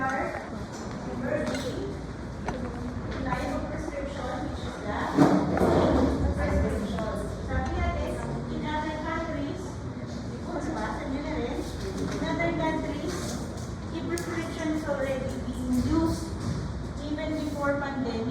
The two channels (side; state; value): both; identical; correlation 1.00